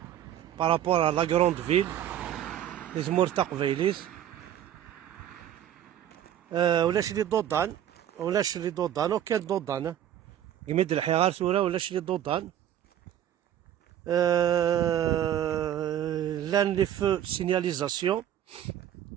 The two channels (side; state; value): left; quieter; 10.9 dB